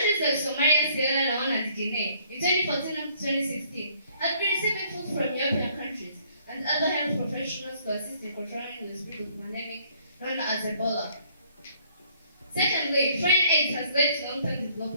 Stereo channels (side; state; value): both; inverted; correlation -0.62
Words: like Somalia, Sierra Leone, and Guinea in 2014 and 2016 have been receiving food from European countries and other health professionals to assist in controlling the spread of pandemic known as Ebola. Secondly, foreign aid has led to long-term